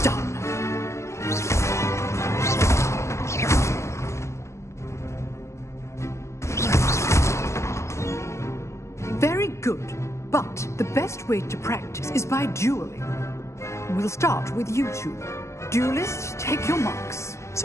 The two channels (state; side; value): late; right; 0.14 ms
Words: done. Very good, but the best way to practice is by dueling. We'll start with you two. Duelists, take your marks.